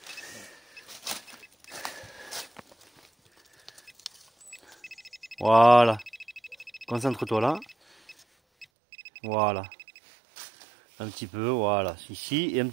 Voilà. Concentre-toi là. Voilà. Un petit peu, voilà. Ici et un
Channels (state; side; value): drops out; left; at 8.7 s